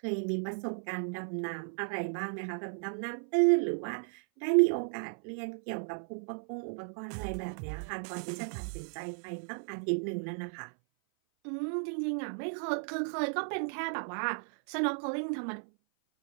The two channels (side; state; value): left; silent; 55 dB below the other